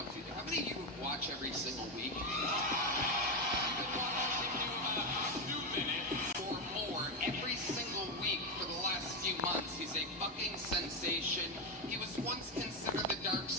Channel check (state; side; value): normal; both; correlation 0.10